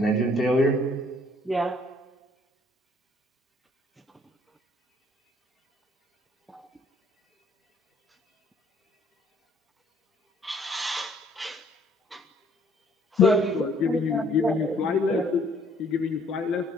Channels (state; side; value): normal; both; correlation 0.62